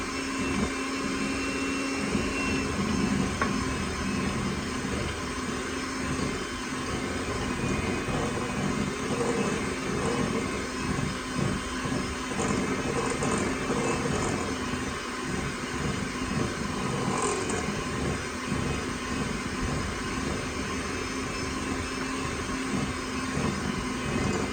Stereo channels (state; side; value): noise; left; hiss, 26 dB below the sound